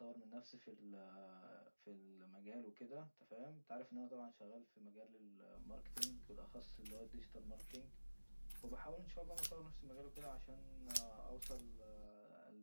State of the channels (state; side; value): inverted; both; correlation -1.00